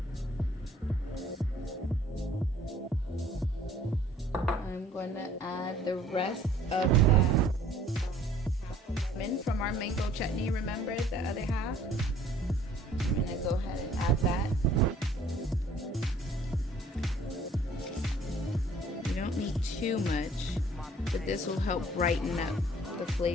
I'm going to add the rest of that from our mango chutney, remember the other half? I'm going to go ahead and add that. You don't need too much, but this will help brighten up the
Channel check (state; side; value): normal; both; correlation 0.56